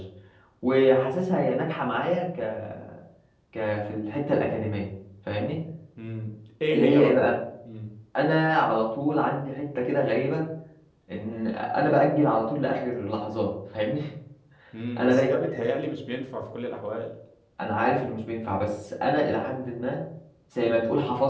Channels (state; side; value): identical; both; correlation 1.00